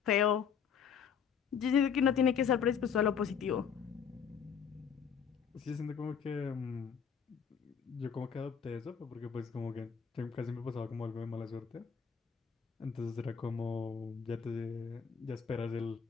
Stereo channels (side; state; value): right; quieter; 7.2 dB